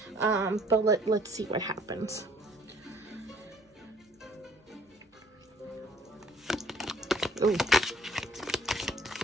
But let's see what happens. Ooh.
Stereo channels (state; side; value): normal; both; correlation 0.59